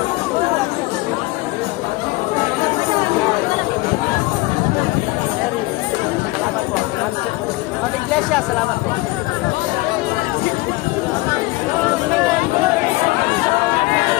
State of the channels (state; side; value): quieter; right; 21.4 dB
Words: Ma'am Iglesia, salamat po.